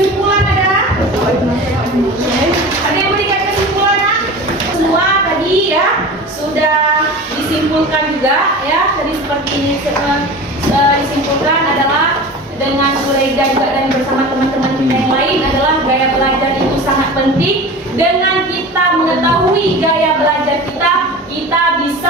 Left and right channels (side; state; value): both; normal; correlation 0.34